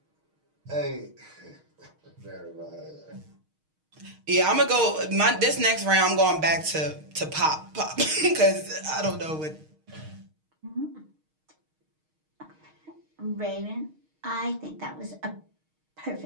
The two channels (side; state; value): left; late; 6.4 ms